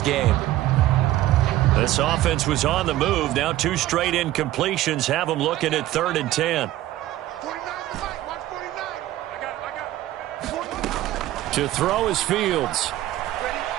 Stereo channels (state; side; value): quieter; left; 14.8 dB